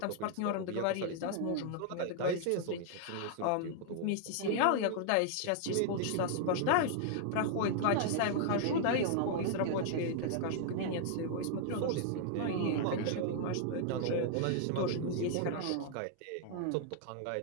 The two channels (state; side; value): different; both; correlation -0.01